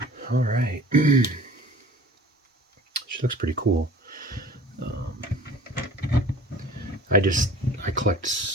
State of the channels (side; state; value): both; normal; correlation 0.45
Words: All right. She looks pretty cool. I collect